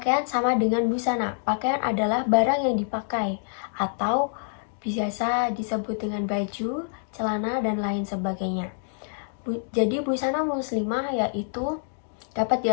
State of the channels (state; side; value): silent; right; digital silence